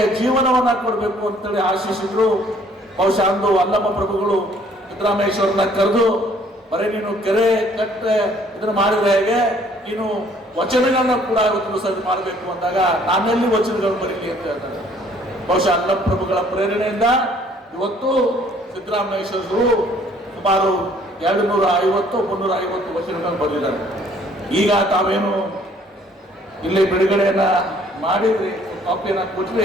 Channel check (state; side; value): normal; both; correlation 0.60